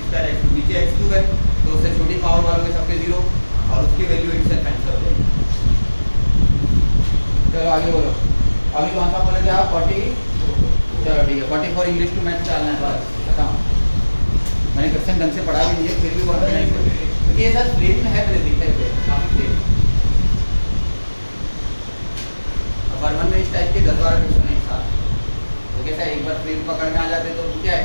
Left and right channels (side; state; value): both; inverted; correlation -1.00